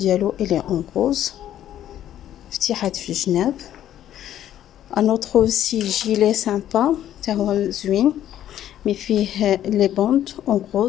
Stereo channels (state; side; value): quieter; right; 11.5 dB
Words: elle est en rose, فتيحات في الجناب. un autre aussi gilet sympa تاع هو زوين مي فيه les bandes en